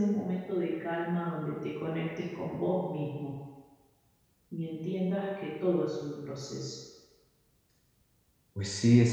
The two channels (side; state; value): both; identical; correlation 1.00